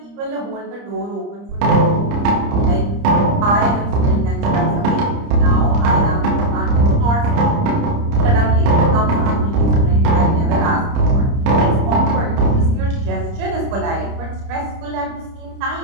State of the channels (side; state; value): left; late; 30 ms